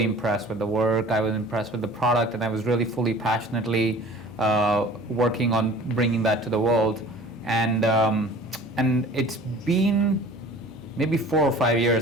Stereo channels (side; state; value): both; normal; correlation 0.45